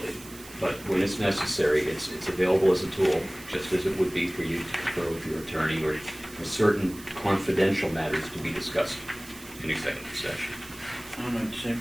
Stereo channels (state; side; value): noise; right; hiss, 18 dB below the sound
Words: But when it's necessary, it's available as a tool, just as it would be for you to confer with your attorney or for certain confidential matters to be discussed in executive session. On an